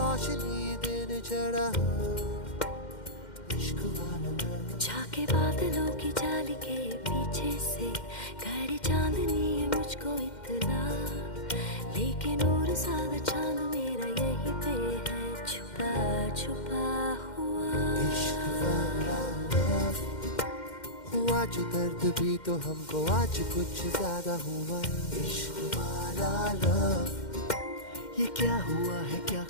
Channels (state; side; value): late; right; 2.1 ms